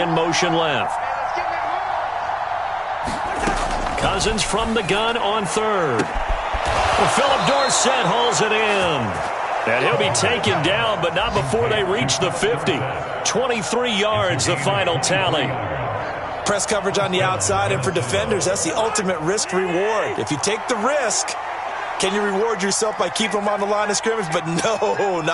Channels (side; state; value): both; identical; correlation 1.00